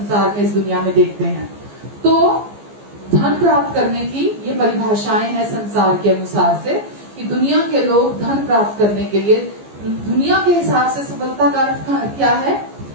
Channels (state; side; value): late; left; 14 ms